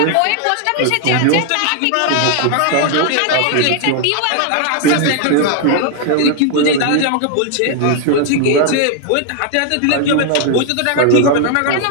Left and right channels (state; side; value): different; both; correlation 0.00